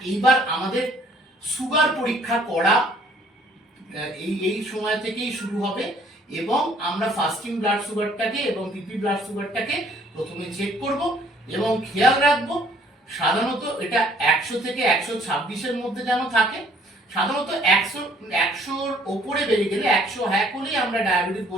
এইবার আমাদের সুগার পরীক্ষা করা এই সময় থেকেই শুরু হবে, এবং আমরা ফাস্টিং ব্লাড সুগারটাকে এবং পিপি ব্লাড সুগারটাকে প্রথমে চেক করব এবং খেয়াল রাখবো সাধারণত এটা 100 থেকে 126-এর মধ্যে যেন থাকে। সাধারণত 100-র ওপরে বেড়ে গেলে 100 হ্যাক হলেই আমরা ডায়াবেটিস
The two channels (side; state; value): both; normal; correlation 0.60